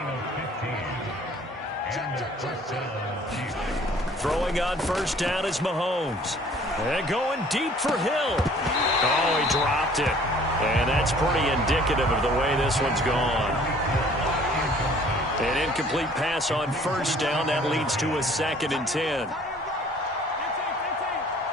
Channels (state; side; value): normal; both; correlation 0.54